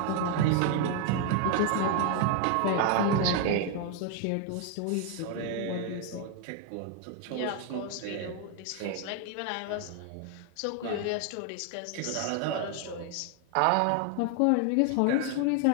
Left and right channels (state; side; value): different; both; correlation 0.01